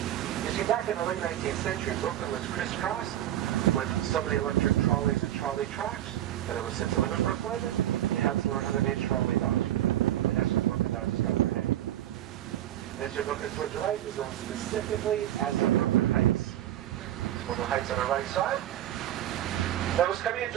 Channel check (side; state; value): left; quieter; 12.6 dB